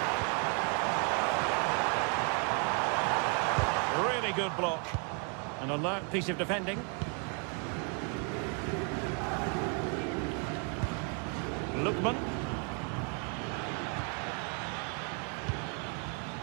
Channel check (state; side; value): quieter; left; 39.3 dB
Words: Really good block. An alert piece of defending. Lookman.